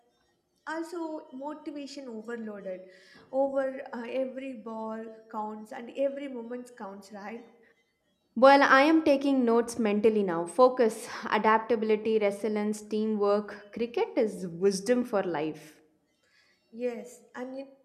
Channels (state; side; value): identical; both; correlation 1.00